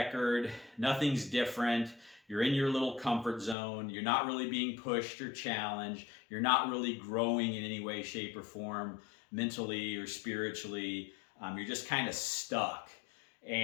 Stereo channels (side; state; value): right; drops out; at 3.6 s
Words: Nothing's different. You're in your little comfort zone. You're not really being pushed or challenged. You're not really growing in any way, shape, or form, mentally or spiritually. You're just kind of stuck.